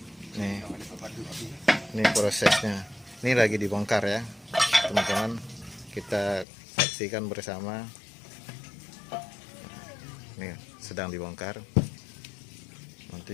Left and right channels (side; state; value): right; drops out; at 6.5 s